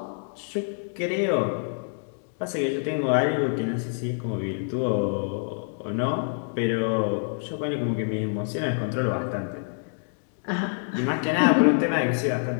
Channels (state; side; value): silent; right; digital silence